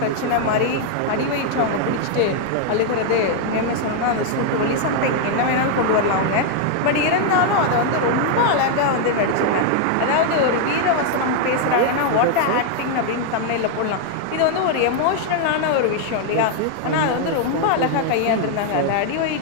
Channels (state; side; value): different; both; correlation 0.00